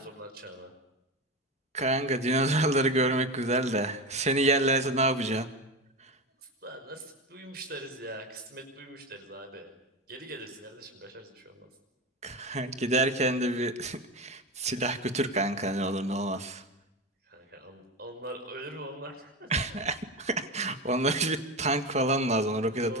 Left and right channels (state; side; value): normal; both; correlation 0.20